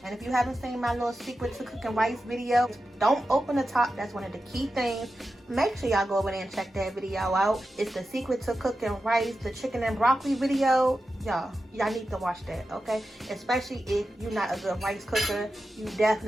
And if you haven't seen my little secret to cooking rice video, don't open the top. That's one of the key things. Make sure y'all go over there and check that video out. It's the secret to cooking rice, the chicken and broccoli video. Y'all need to watch that, okay? Especially if you're not a good rice cooker, you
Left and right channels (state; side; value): normal; both; correlation 0.91